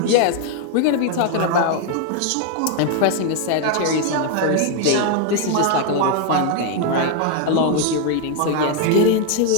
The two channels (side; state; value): both; different; correlation 0.01